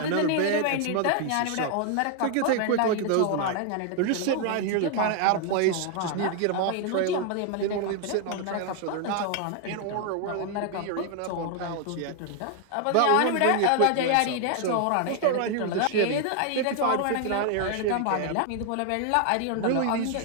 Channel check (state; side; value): different; both; correlation 0.00